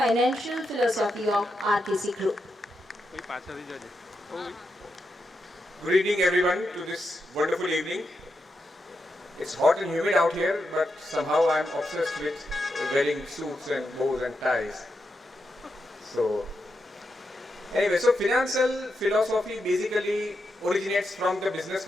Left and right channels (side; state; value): both; normal; correlation 0.85